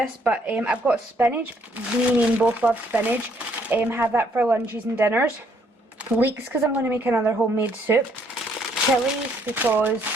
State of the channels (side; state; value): both; normal; correlation 0.67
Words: but I've got spinach, me and Ian both love spinach, have that for lunches and dinners. Leeks because I'm going to make another homemade soup. Chilies because